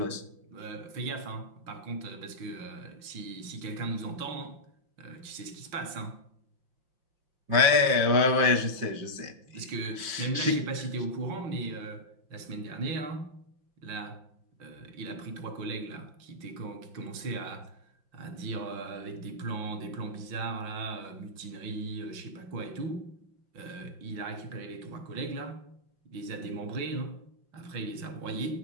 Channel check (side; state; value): left; late; 5.7 ms